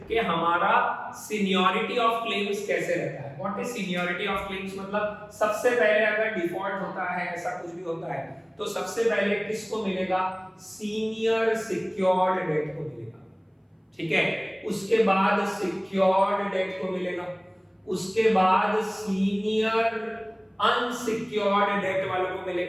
कि हमारा सीनियरिटी ऑफ क्लेम्स कैसे रहता है। What is seniority of claims मतलब सबसे पहले अगर डिफॉल्ट होता है, ऐसा कुछ भी होता है, तो सबसे पहले किसको मिलेगा, सीनियर सिक्योर्ड डेट को मिलेगा, ठीक है, उसके बाद सिक्योर्ड डेट को मिलेगा, उसके बाद सीनियर अनसिक्योर्ड डेट वालों को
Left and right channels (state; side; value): identical; both; correlation 1.00